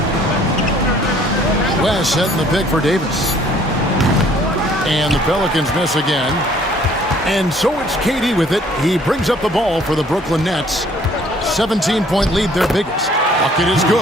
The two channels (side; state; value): both; normal; correlation 0.58